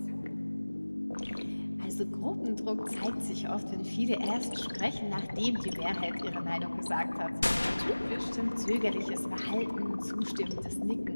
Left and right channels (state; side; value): inverted; both; correlation -1.00